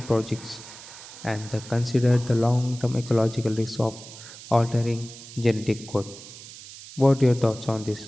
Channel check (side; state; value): right; noise; hiss, 16 dB below the sound